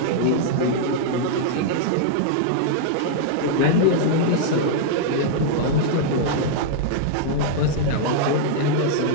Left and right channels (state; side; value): different; both; correlation -0.01